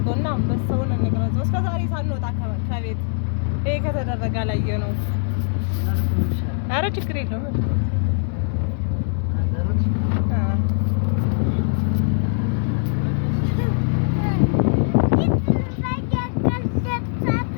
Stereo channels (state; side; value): silent; right; 60 dB below the other